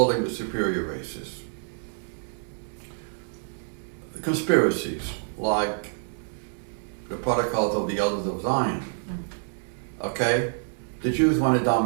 the superior races. Conspiracies like the Protocols of the Elders of Zion. Okay, the Jews want to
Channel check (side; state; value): left; silent; digital silence